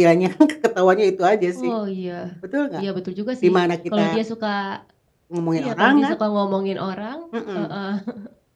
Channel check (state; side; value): identical; both; correlation 1.00